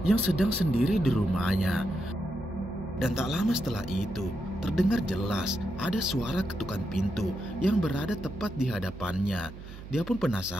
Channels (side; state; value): right; noise; hum, 14 dB below the sound